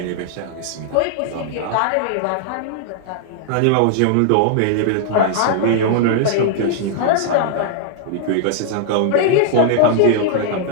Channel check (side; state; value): both; different; correlation -0.01